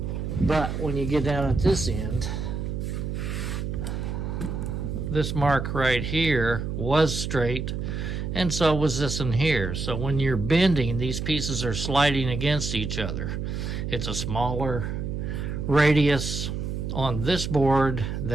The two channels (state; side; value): noise; right; hum, 3 dB below the sound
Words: but when you get down at this end, this mark right here was straight, and so was this in here. So when you're bending, these pieces are sliding against each other. It's a smaller radius on this board